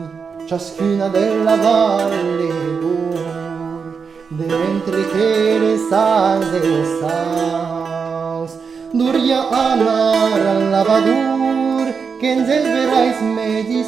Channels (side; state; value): left; quieter; 5.7 dB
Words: ciascuna della valle d'or, de mentre che le salve saus, duria anar al lavadur, che en verais